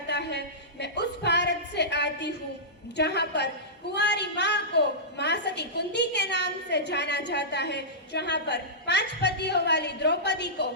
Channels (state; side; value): normal; both; correlation -0.17